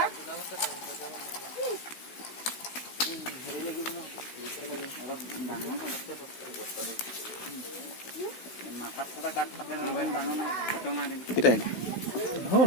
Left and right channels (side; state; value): right; late; 16 ms